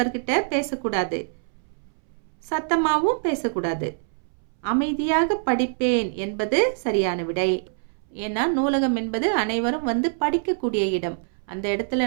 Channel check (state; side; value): silent; left; 62 dB below the other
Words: பேசக்கூடாது, சத்தமாவும் பேசக்கூடாது. அமைதியாக படிப்பேன் என்பது சரியான விடை. ஏன்னா நூலகம் என்பது அனைவரும் படிக்கக்கூடிய இடம். அந்த இடத்துல